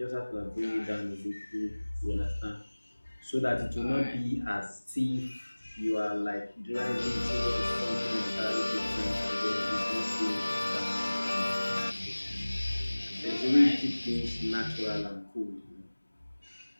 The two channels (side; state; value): both; inverted; correlation -1.00